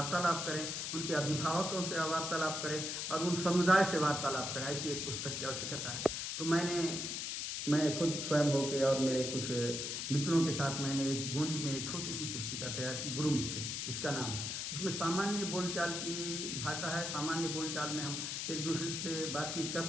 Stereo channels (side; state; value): left; noise; hiss, 3 dB below the sound